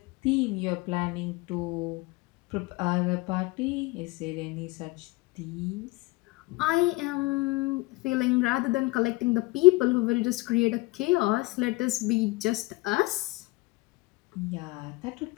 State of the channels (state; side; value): quieter; right; 22.5 dB